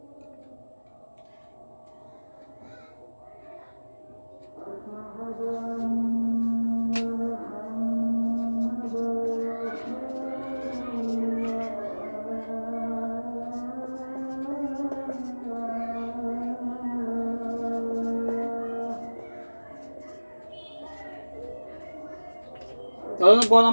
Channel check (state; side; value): inverted; both; correlation -1.00